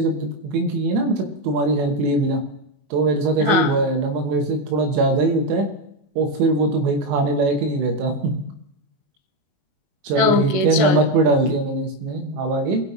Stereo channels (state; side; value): late; left; 21 ms